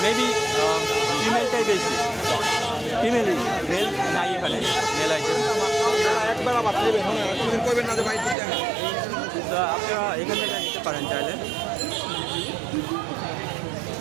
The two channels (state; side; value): drops out; left; at 8.3 s